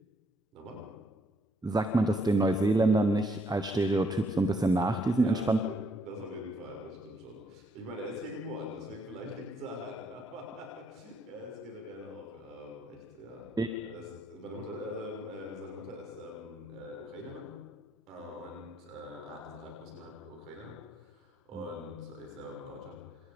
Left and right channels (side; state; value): both; normal; correlation 0.71